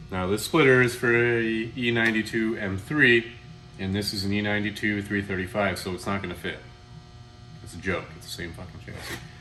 Now this splitter is for a E92 M3, and this is an E92 335, so it's not going to fit. It's a joke. It's the same fucking chassis.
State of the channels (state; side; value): identical; both; correlation 1.00